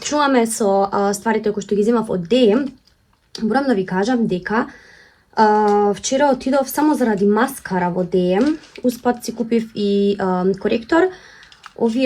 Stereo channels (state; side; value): identical; both; correlation 1.00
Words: Чуваме со стварите кои што ги земав од DM. Морам да ви кажам дека вчера отидов само заради маскара во DM. Успат си купив и коректор.